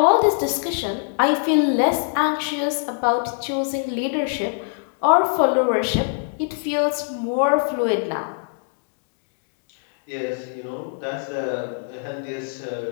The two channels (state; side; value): silent; right; digital silence